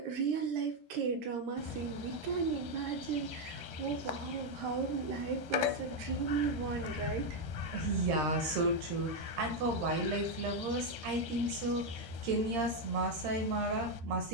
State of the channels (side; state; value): left; late; 13 ms